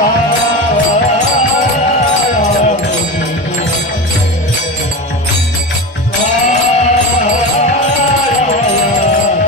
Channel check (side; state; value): both; normal; correlation 0.24